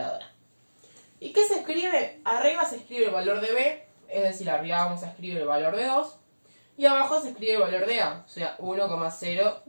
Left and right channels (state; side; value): inverted; both; correlation -1.00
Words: ¿Y qué se escribe? Arriba se escribe el valor de b, es decir, arriba vamos a escribir el valor de 2, y abajo se escribe el valor de a, o sea,